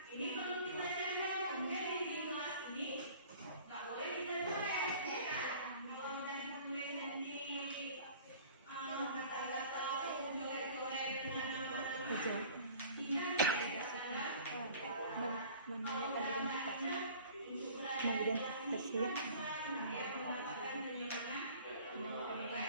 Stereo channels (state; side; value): inverted; both; correlation -0.47